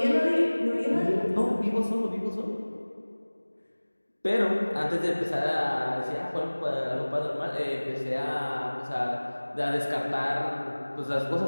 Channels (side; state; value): both; inverted; correlation -1.00